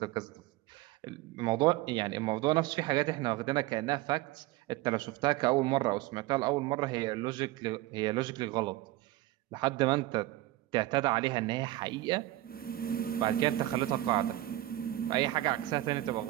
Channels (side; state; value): left; quieter; 16.5 dB